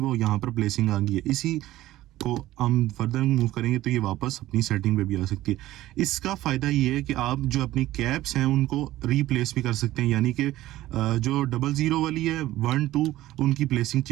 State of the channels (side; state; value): left; quieter; 15.5 dB